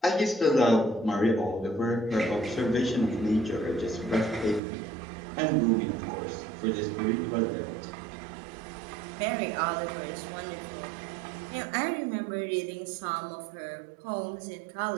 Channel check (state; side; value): drops out; left; at 4.6 s